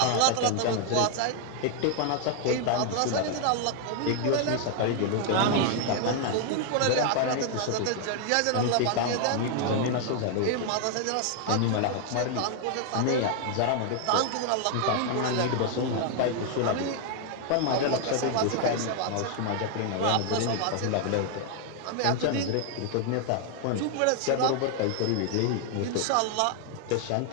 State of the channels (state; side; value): different; both; correlation 0.00